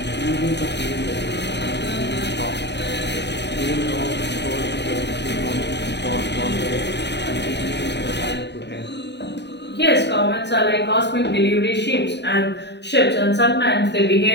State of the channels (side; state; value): right; late; 0.50 ms